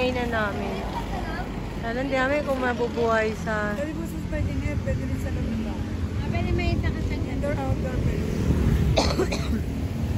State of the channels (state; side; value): identical; both; correlation 1.00